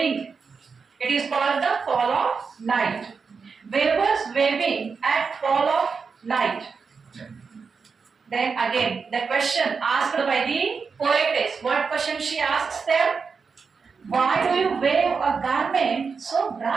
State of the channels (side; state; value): left; quieter; 5.3 dB